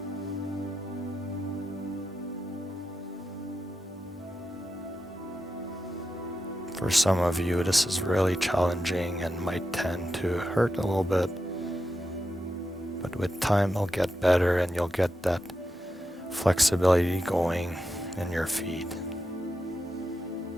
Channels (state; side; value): normal; both; correlation 0.88